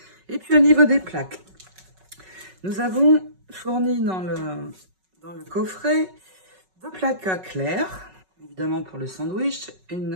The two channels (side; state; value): left; late; 5.4 ms